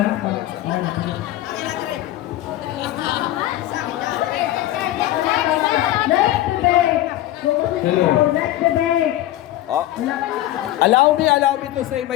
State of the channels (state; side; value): quieter; right; 14.6 dB